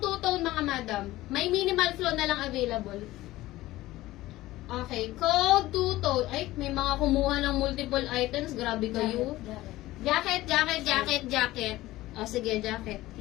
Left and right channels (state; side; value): quieter; right; 17.0 dB